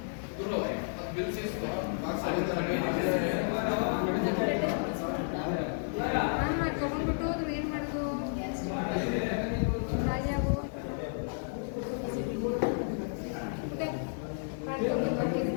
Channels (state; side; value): silent; right; digital silence